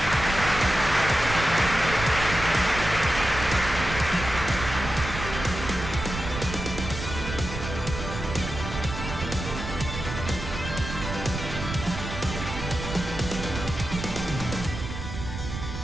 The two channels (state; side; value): noise; right; rumble, 7 dB below the sound